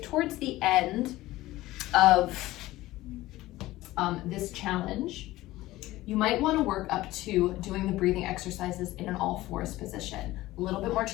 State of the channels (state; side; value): quieter; right; 17.2 dB